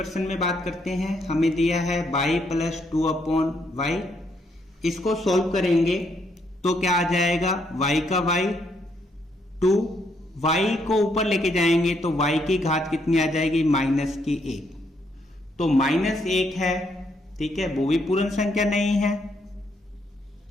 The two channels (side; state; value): both; normal; correlation 0.74